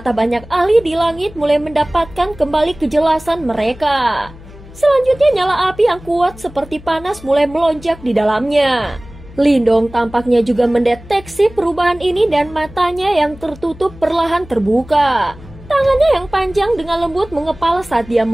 banyak ahli di langit mulai mendapatkan kembali kejelasan mereka. Selanjutnya nyala api yang kuat seperti panas mulai melonjak di dalamnya. Lindong tampaknya juga mendeteksi perubahan ini dan matanya yang tertutup perlahan terbuka. Tangannya yang panjang dengan lembut mengepal saat dia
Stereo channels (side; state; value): left; noise; hum, 19 dB below the sound